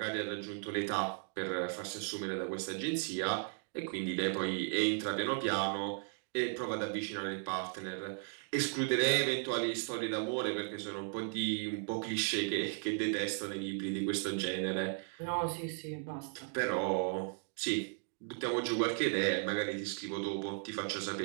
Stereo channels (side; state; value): left; silent; 54 dB below the other